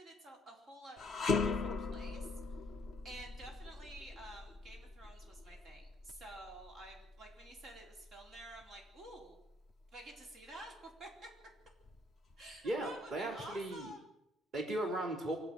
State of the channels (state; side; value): normal; both; correlation 0.66